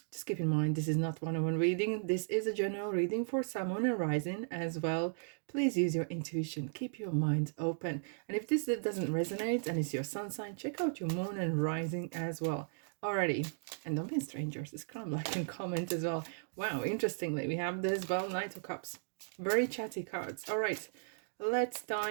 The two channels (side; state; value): left; silent; digital silence